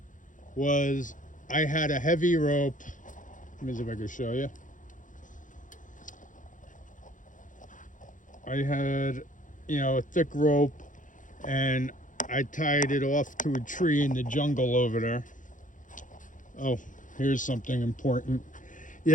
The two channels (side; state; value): right; late; 0.37 ms